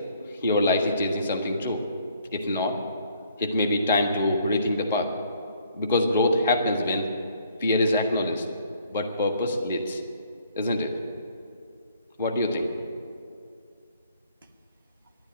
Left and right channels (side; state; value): both; inverted; correlation -0.63